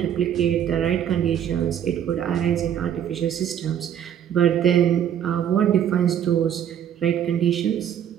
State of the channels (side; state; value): left; quieter; 9.6 dB